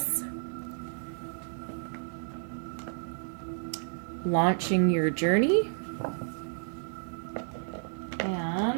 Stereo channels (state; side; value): silent; left; 57 dB below the other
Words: launching your journey,